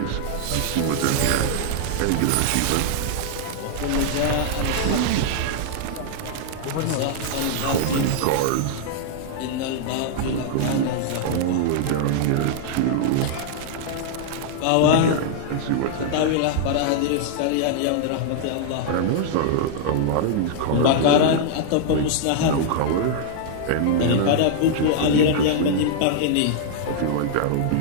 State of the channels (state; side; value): different; both; correlation -0.01